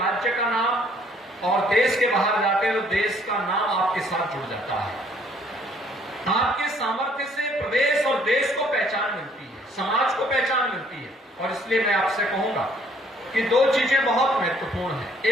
का नाम, और देश के बाहर जाते हैं तो देश का नाम आपके साथ जुड़ जाता है। आपके सामर्थ्य से प्रदेश और देश को पहचान मिलती है, समाज को पहचान मिलती है। और इसलिए मैं आपसे कहूंगा कि दो चीजें बहुत महत्वपूर्ण हैं।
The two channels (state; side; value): normal; both; correlation 0.62